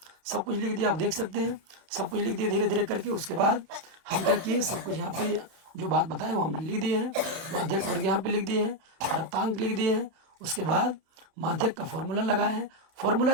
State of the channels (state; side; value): late; left; 31 ms